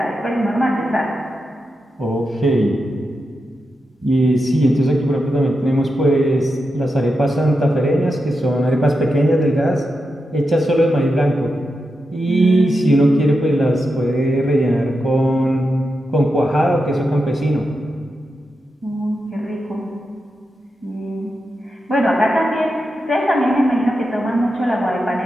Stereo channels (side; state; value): both; normal; correlation 0.88